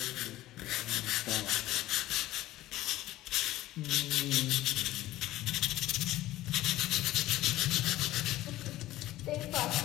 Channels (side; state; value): right; quieter; 15.8 dB